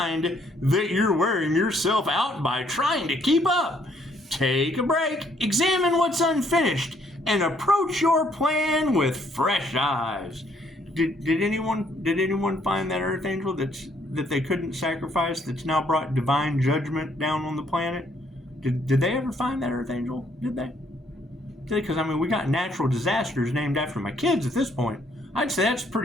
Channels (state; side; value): normal; both; correlation 0.68